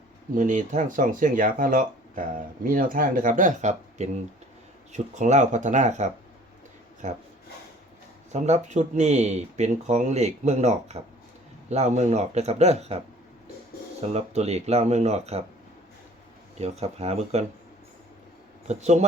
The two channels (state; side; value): normal; both; correlation 0.51